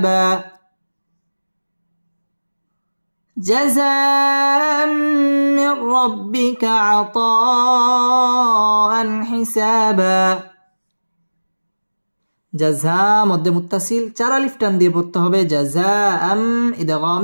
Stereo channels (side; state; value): both; inverted; correlation -1.00